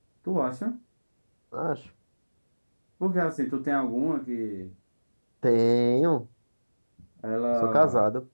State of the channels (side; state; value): both; inverted; correlation -1.00